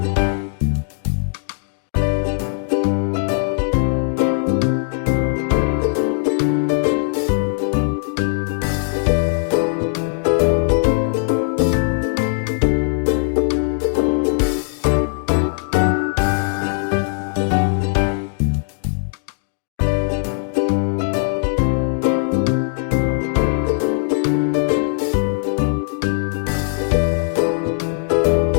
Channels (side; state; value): right; silent; 65 dB below the other